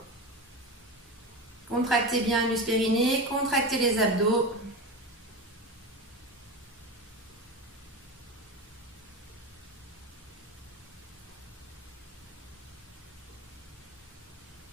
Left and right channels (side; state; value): both; normal; correlation 0.23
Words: Contractez bien l'us périnée, contractez les abdos.